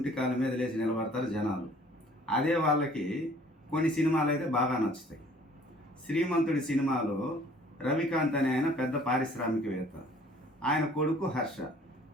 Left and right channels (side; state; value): both; normal; correlation 0.55